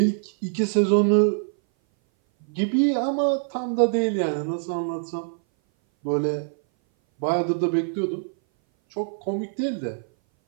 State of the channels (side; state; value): left; silent; 59 dB below the other